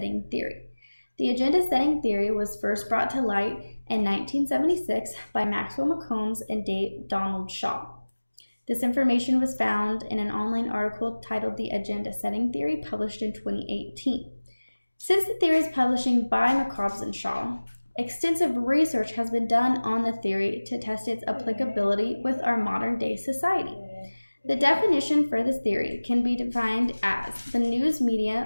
theory. The agenda setting theory was first brought to light in 1976 by Maxwell McCombs and Donald Shaw. This information was found in an online article titled The Agenda Setting Theory, published in 2018. Since the theory is publishing by McCombs and Shaw, extensive research has been done on the theory to test its applicability with our modern-day society. The definition for this theory can be defined as the news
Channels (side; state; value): both; inverted; correlation -1.00